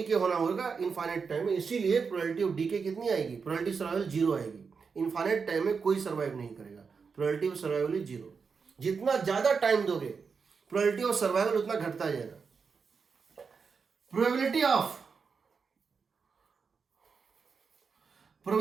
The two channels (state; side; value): quieter; left; 5.5 dB